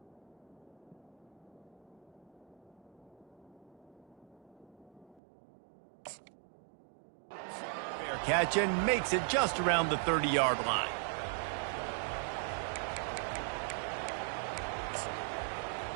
Catch and makes it just around the 30-yard line.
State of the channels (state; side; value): drops out; left; at 5.2 s